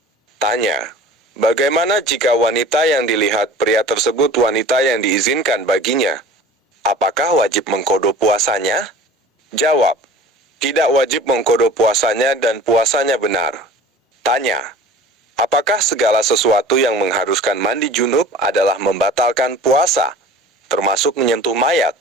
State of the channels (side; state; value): both; normal; correlation 0.42